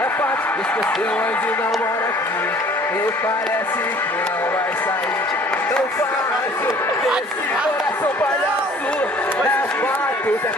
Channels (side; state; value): both; normal; correlation 0.52